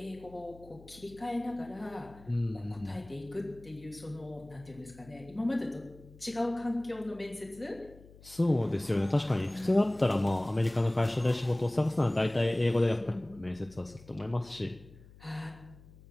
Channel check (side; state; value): left; noise; hum, 22 dB below the sound